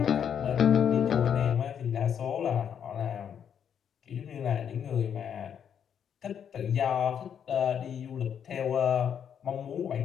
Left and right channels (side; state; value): right; quieter; 8.3 dB